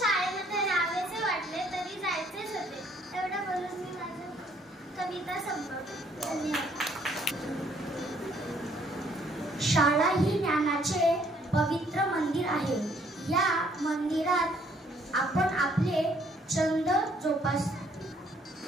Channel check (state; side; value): normal; both; correlation 0.65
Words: राहावेसे वाटले तरी जायचेच होते. एवढं बोलून मी माझी कविता संपवते. धन्यवाद. शाळा ही ज्ञानाचे पवित्र मंदिर आहे. या मंदिरात आपण आपले छंद जोपास.